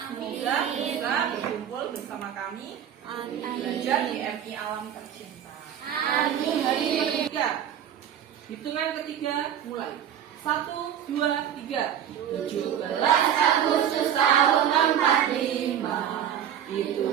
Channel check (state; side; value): quieter; left; 9.7 dB